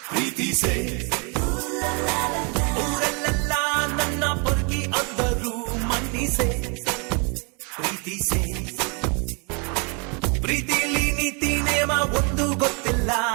ಪ್ರೀತಿಸೆ ಊರಲ್ಲೆಲ್ಲ ನನ್ನ ಪೊರ್ಕಿ ಅಂದರು ಮನ್ನಿಸೆ ಪ್ರೀತಿಸೆ ಪ್ರೀತಿಲಿ ನೀತಿ ನೇಮ ಒಂದು ಗೊತ್ತಿಲ್ಲ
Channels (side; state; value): left; quieter; 34.6 dB